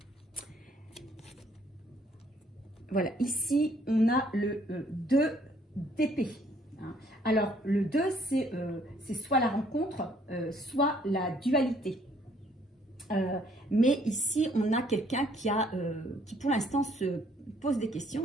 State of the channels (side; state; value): both; normal; correlation 0.64